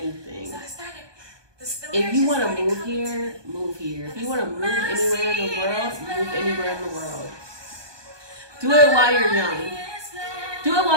If you want to move here, move here. If you want to move anywhere in the world, move anywhere in the world. Do it while you're young. Do it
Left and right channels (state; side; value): late; left; 1.2 ms